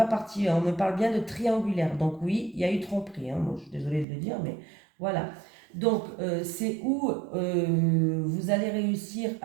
partie. On me parle bien de triangulaire. Donc oui, il y a eu tromperie, hein. Moi, je suis désolée de le dire, mais voilà. Donc, c'est où vous allez réussir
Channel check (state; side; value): drops out; left; at 4.0 s